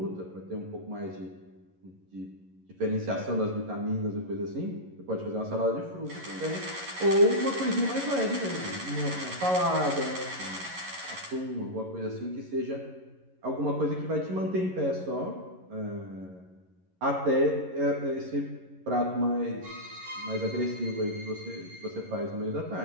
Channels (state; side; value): late; left; 11 ms